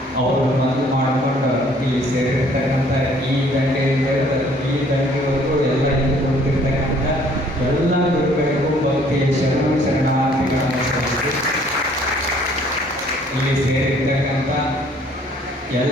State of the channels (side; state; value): both; normal; correlation 0.59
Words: ಅವರು ಮನವಿ ಮಾಡಿಕೊಂಡು ಇಲ್ಲಿ ಸೇರಿರ್ತಕ್ಕಂಥ ಈ ದಂಡೆಯಿಂದ ಈ ದಂಡೆವರೆಗೂ ಎಲ್ಲ ನಿಂತುಕೊಂಡಿರ್ತಕ್ಕಂಥ ಎಲ್ಲ ಗುರುಗಳಿಗೂ ಭಕ್ತಿ ಶರಣಾರ್ಥಿಗಳನ್ನು ಸಲ್ಲಿಸಿ ಇಲ್ಲಿ ಸೇರಿರ್ತಕ್ಕಂಥ